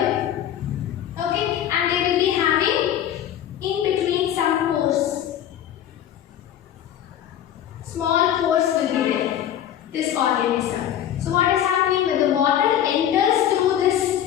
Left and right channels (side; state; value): right; quieter; 10.6 dB